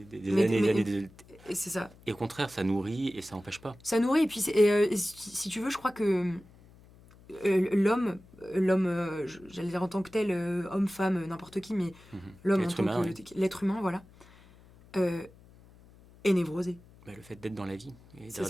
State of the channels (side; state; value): left; noise; hum, 24 dB below the sound